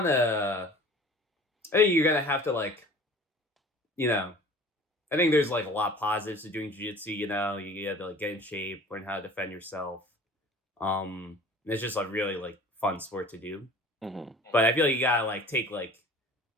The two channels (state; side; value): normal; both; correlation 0.45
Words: think you're gonna have to like you know I think there's like a lot of positives to doing jiu-jitsu, you have to like get in shape, learn how to defend yourself. It's just a really like fun sport to do. Hmm. But I feel like you gotta like take like